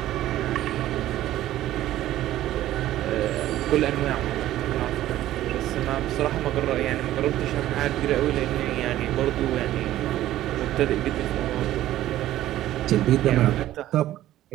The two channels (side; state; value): left; quieter; 14.0 dB